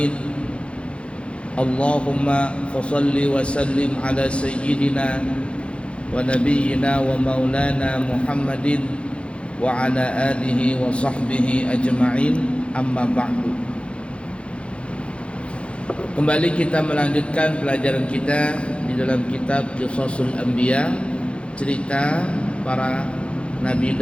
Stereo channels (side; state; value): right; late; 0.059 ms